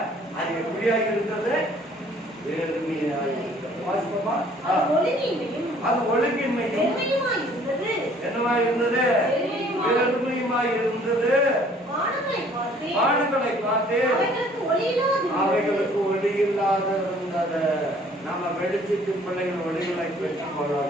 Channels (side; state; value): both; normal; correlation 0.57